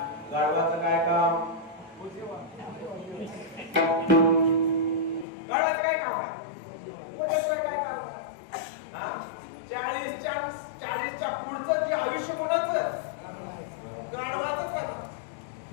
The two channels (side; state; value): right; drops out; at 5.2 s